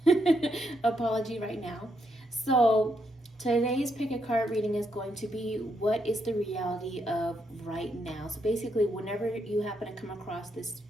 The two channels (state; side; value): normal; both; correlation 0.78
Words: apology right now. So today's pick a card reading is going to be what is the reality of right now. So basically, whenever you happen to come across this